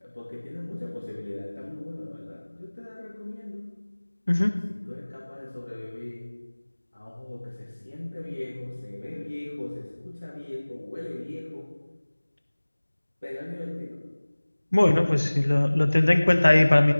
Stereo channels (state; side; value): inverted; both; correlation -1.00